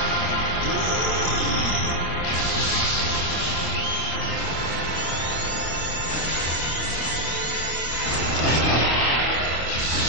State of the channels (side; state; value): right; late; 25 ms